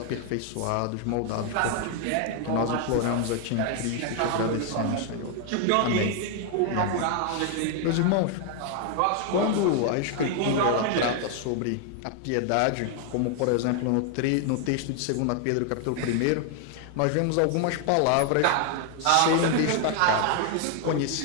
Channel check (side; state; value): both; different; correlation 0.00